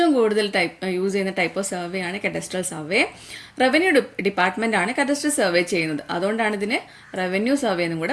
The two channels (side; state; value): both; identical; correlation 1.00